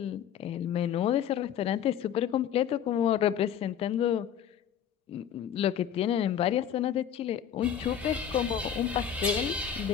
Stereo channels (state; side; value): quieter; right; 9.1 dB